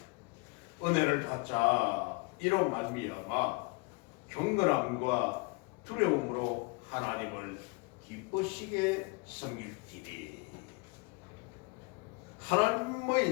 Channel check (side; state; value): right; quieter; 29.3 dB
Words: 은혜를 받자 이로 말미암아 경건함과 두려움으로 하나님을 기쁘시게 섬길지니.